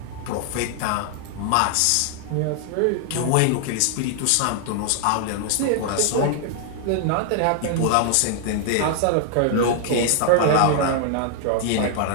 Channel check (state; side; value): different; both; correlation 0.00